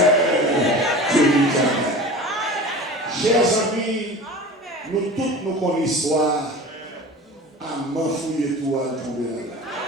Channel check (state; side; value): normal; both; correlation 0.36